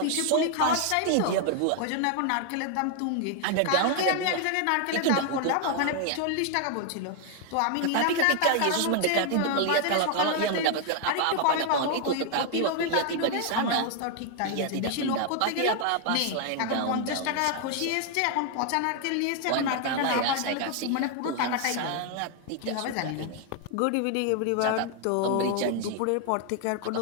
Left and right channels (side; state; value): both; different; correlation 0.00